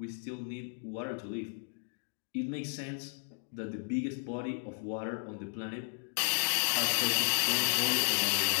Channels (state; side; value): silent; right; 55 dB below the other